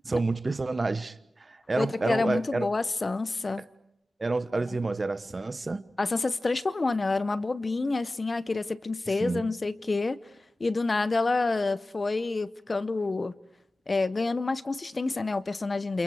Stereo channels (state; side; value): normal; both; correlation 0.95